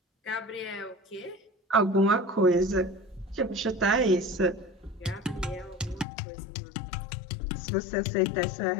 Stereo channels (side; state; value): right; drops out; at 6.1 s